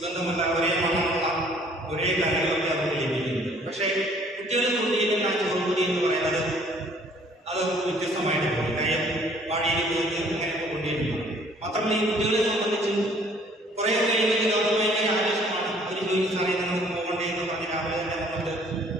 ഒരേ മണമുള്ള, ഒരേ കറികളൊക്കെ അവർക്ക് ലഭിക്കുന്നത്. പക്ഷേ കുട്ടികൾ കൊണ്ടുവരുന്ന ആ ചോറുകൂടി എന്ന് പറയുന്നത് അത് വ്യത്യസ്തമായിട്ട് പോകും. കാര്യം വാടിയിൽ പോയിട്ട് അങ്ങനെയൊക്കെ കൊണ്ടുവരുന്നു. മാത്രമല്ല ഈ കുട്ടികളെ സംബന്ധിച്ച് കുറേയൊക്കെ ഭയങ്കര ആവശ്യമാണ്. ഒരു ജോലി സമയത്ത് നമുക്ക് പോകണ്ടേ എന്ന് പറഞ്ഞ് രാവിലെ തന്നെ നമുക്ക്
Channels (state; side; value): normal; both; correlation 0.58